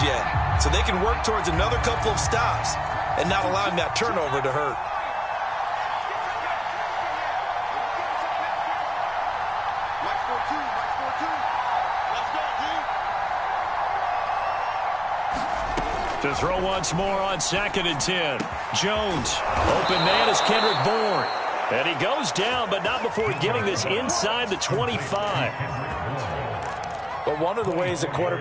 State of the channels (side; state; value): both; identical; correlation 1.00